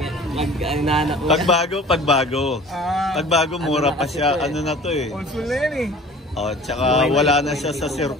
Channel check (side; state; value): both; normal; correlation 0.44